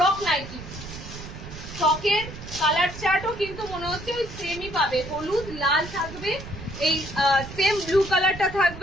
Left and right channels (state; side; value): noise; right; rumble, 12 dB below the sound